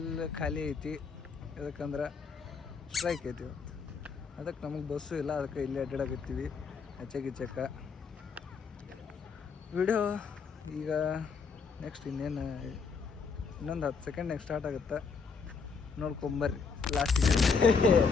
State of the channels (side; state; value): right; quieter; 5.4 dB